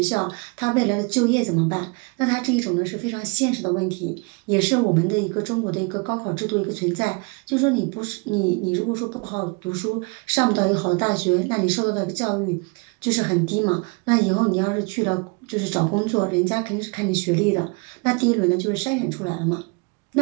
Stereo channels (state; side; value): quieter; left; 30.4 dB